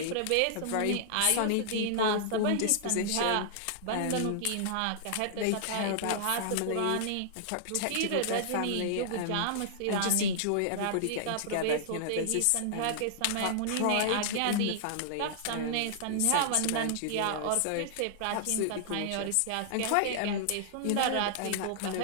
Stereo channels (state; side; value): different; both; correlation -0.01